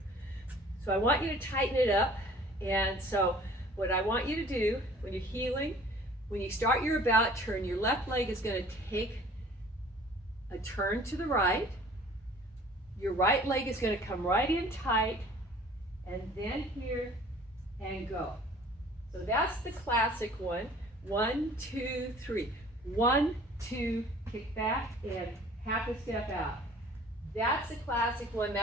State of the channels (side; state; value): both; normal; correlation 0.50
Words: So I want you to tighten it up. And so what I want you to do when you're heeling, when you start your about turn, your left leg is going to take a turn to the right. Your right leg is going to come right in tight, and then here and go. So that's the classic one. 1, 2, 3. 1, 2, kick back, and half a step out. That's the classic one.